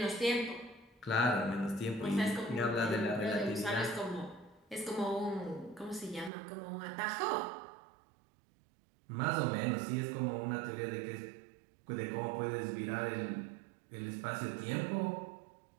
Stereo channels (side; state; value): left; drops out; at 6.3 s